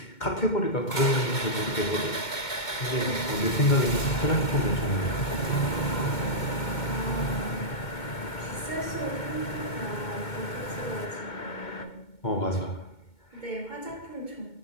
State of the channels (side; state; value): right; late; 2.2 ms